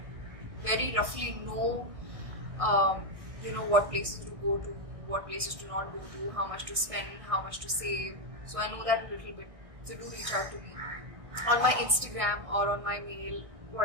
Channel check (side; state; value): left; late; 1.6 ms